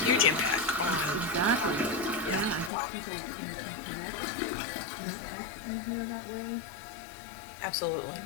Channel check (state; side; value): drops out; right; at 2.7 s